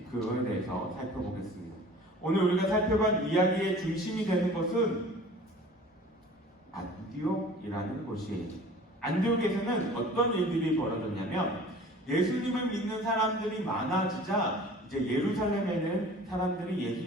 그거에 대해서 살펴보겠습니다. 오늘 우리가 살펴본 이야기의 중심이 되는 것은 안디옥이라는 곳이에요. 안디옥에서는 어떤 일들이 벌어졌냐면 예수님을 믿는 사람들이 많아지자 이제 예루살렘에는 사람들이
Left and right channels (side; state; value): both; normal; correlation 0.45